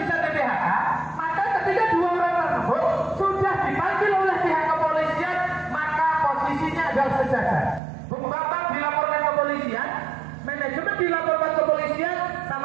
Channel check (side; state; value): left; drops out; at 7.8 s